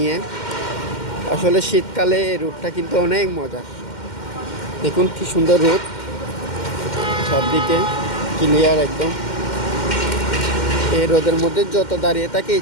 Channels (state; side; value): late; right; 2.1 ms